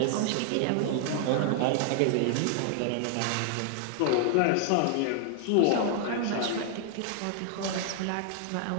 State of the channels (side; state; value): both; different; correlation 0.00